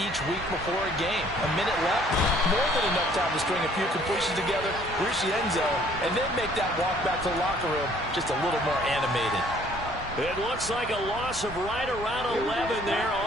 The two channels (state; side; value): normal; both; correlation 0.59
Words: week before a game. A minute left, more than enough time to string a few completions together, reach the end zone, and then make that walk back to the locker room just a little more animated. It looks like a loss of right around 11 there